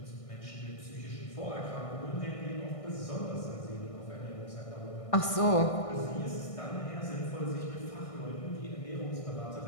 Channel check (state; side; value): late; right; 1.6 ms